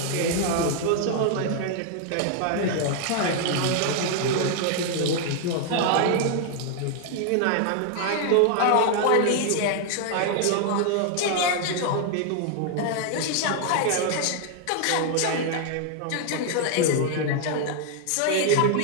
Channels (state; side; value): different; both; correlation 0.00